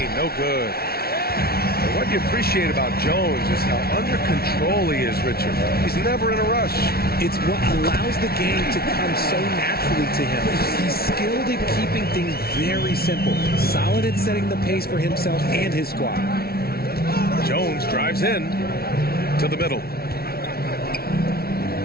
no good. And what you appreciate about Jones is how under control he is, Richard. He's never in a rush. It's what allows the game to come so naturally to him. He's skilled at keeping things very simple. Solid at setting the pace for himself and his squad. Jones drives in to the middle.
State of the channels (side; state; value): right; late; 0.44 ms